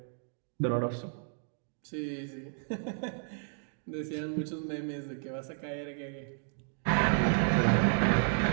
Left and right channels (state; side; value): silent; left; digital silence